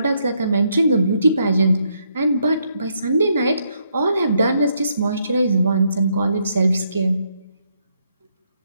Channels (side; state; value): both; inverted; correlation -0.75